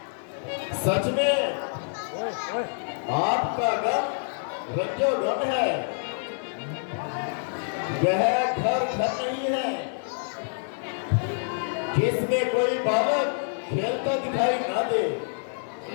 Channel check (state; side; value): silent; right; 60 dB below the other